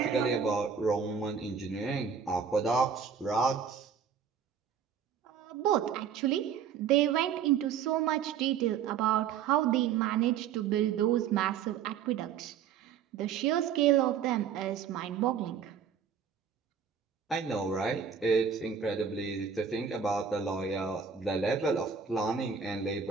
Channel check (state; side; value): quieter; left; 7.3 dB